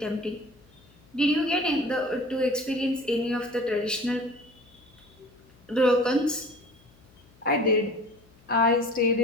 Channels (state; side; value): noise; left; hum, 28 dB below the sound